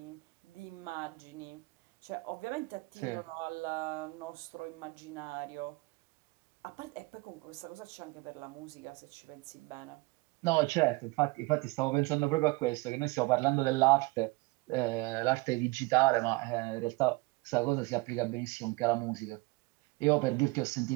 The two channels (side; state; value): left; quieter; 24.9 dB